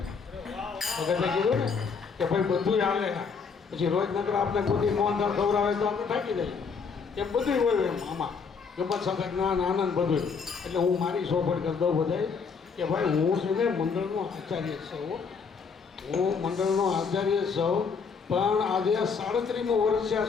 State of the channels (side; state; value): right; quieter; 5.5 dB